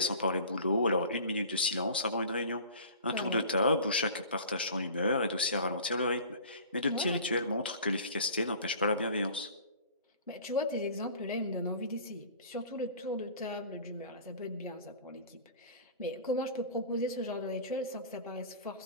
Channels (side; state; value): both; inverted; correlation -0.43